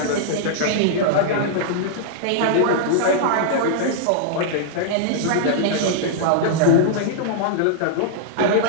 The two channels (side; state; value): both; different; correlation -0.02